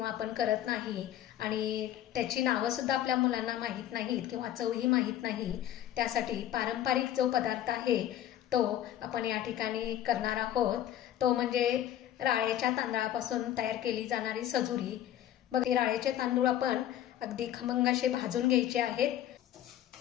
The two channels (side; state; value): right; quieter; 11.9 dB